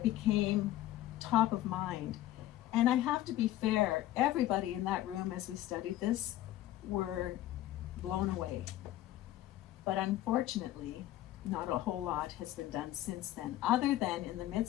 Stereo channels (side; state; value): right; quieter; 14.3 dB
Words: became top of mind. And I have to be fair, everybody in that room as we studied this were blown away. But unfortunately, not a whole lot has been done since then, other than in the